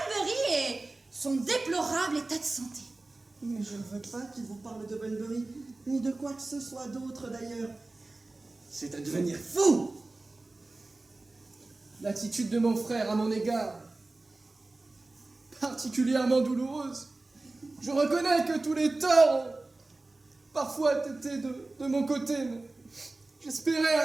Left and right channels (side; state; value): left; quieter; 3.1 dB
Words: et son déplorable état de santé. Mais je ne veux pas qu'il vous parle de Bunbury, ni de quoi que ce soit d'autre d'ailleurs. C'est à devenir fou! L'attitude de mon frère à mon égard, particulièrement douloureuse. Je reconnais que tous les torts ont parfois été de mon côté, mais j'espérais